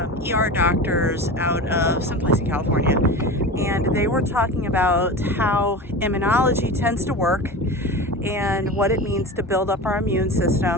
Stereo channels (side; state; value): both; normal; correlation 0.29